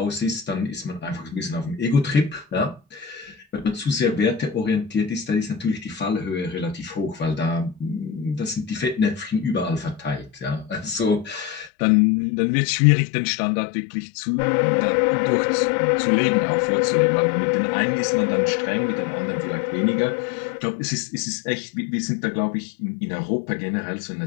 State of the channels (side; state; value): right; drops out; at 11.7 s